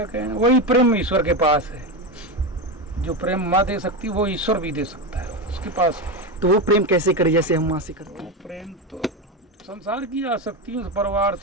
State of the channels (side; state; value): both; normal; correlation 0.16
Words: कहना, वही प्रेम ईश्वर के पास है। जो प्रेम माँ दे सकती है वो ईश्वर भी दे सकता है उसके पास। तो वो प्रेम कैसे करे जैसे हम माँ से करते हैं? प्रेम तो संसार की आसक्तियों से, परिवार